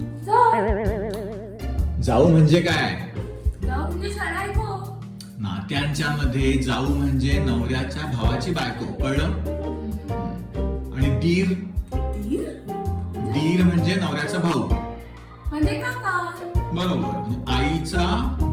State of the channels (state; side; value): identical; both; correlation 1.00